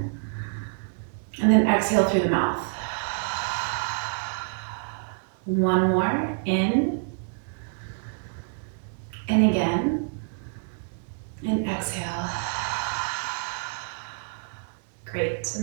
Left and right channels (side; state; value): left; silent; 58 dB below the other